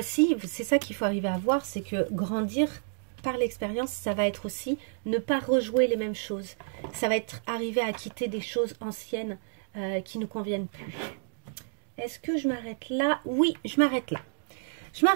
c'est ça qu'il faut arriver à voir, c'est que grandir par l'expérience, ça va être aussi ne pas rejouer les mêmes choses. Ça va être arriver à quitter des choses anciennes qui ne nous conviennent plus. Est-ce que je m'arrête là? Oui, je m'arrête là. Je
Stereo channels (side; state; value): left; silent; digital silence